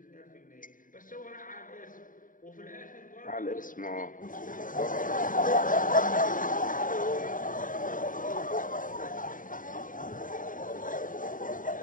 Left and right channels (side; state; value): right; late; 0.39 ms